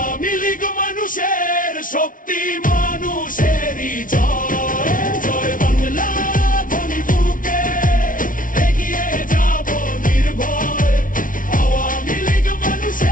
লীগ মানুষের শক্তি মানুষেরই জয়। জয় বাংলা ধ্বনি বুকে এগিয়ে যাব নির্ভয়, আওয়ামী লীগ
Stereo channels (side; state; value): right; late; 0.39 ms